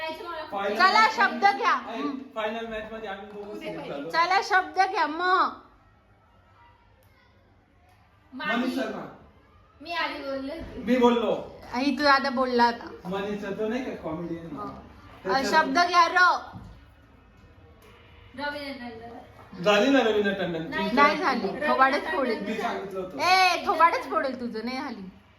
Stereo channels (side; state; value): both; identical; correlation 1.00